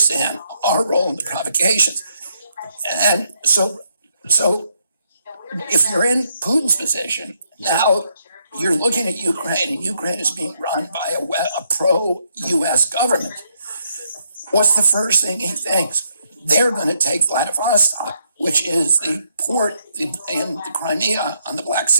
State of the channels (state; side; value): inverted; both; correlation -0.75